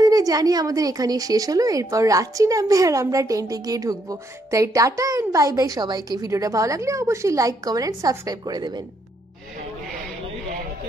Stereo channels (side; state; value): both; normal; correlation 0.74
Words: জানি আমাদের এখানে শেষ হলো, এরপর রাত্রি নামবে আর আমরা টেন্টে গিয়ে ঢুকবো। তাই টাটা এন্ড বাই বাই সবাইকে। ভিডিওটা ভালো লাগলে অবশ্যই লাইক, কমেন্ট এন্ড সাবস্ক্রাইব করে দেবেন।